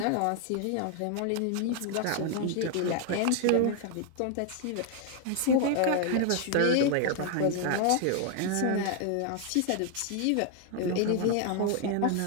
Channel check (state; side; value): different; both; correlation 0.00